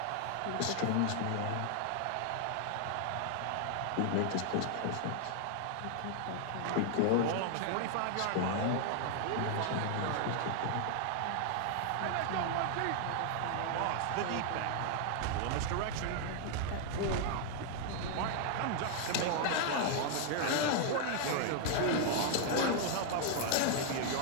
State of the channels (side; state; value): both; different; correlation 0.00